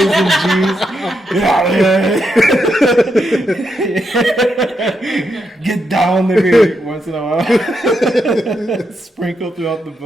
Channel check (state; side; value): normal; both; correlation 0.82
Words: and G's. Get down every once in a while. Sprinkle throughout the